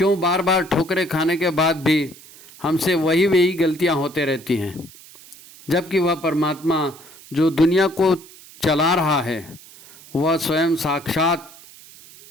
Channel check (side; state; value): right; noise; hiss, 21 dB below the sound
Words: बार बार ठोकरें खाने के बाद भी हमसे वही गलतियां होते रहती हैं, जबकि वह परमात्मा जो दुनिया को चला रहा है वह स्वयं साक्षात